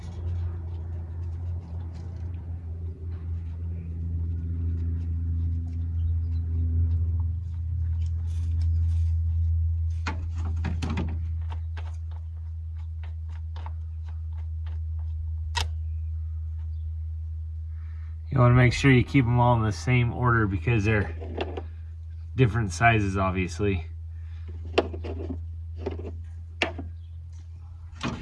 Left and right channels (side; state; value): both; identical; correlation 1.00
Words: You want to make sure you keep them all in the same order because they're different sizes, obviously.